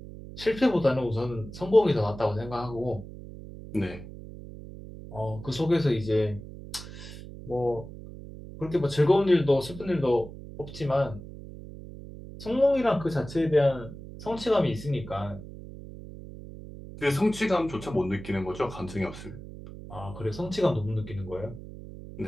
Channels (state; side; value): noise; right; hum, 13 dB below the sound